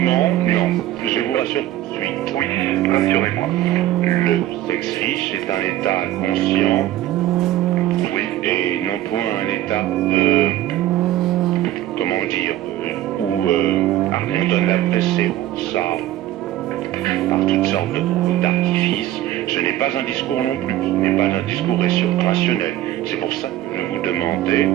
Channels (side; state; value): left; quieter; 13.6 dB